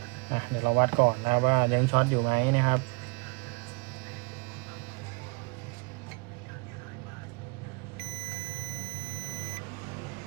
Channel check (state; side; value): quieter; left; 30.9 dB